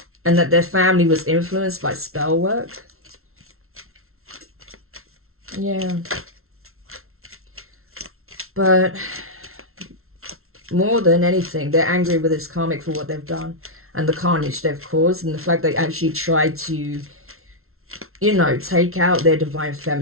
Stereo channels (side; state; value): left; late; 0.62 ms